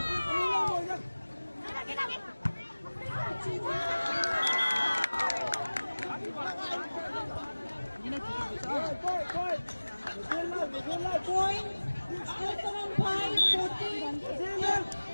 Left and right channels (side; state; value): both; inverted; correlation -1.00